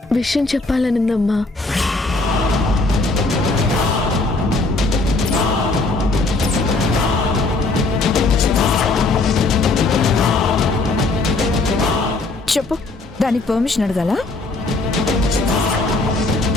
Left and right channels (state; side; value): quieter; right; 3.2 dB